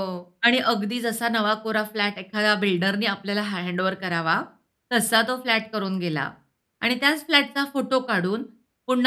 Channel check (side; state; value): both; identical; correlation 1.00